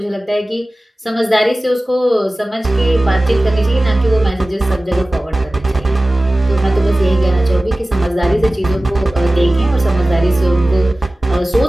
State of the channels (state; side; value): normal; both; correlation 0.97